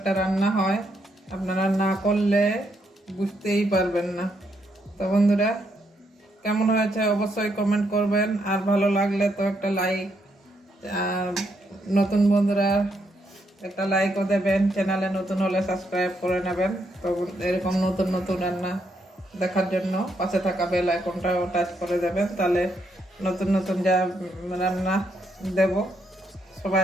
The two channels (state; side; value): normal; both; correlation 0.77